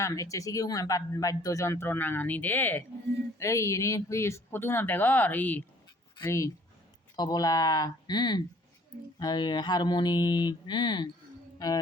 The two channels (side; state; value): both; normal; correlation 0.57